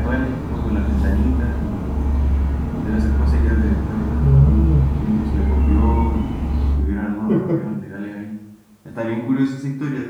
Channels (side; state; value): both; identical; correlation 1.00